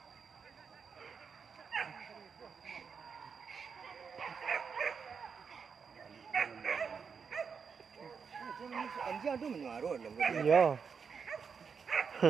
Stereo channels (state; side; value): quieter; left; 6.0 dB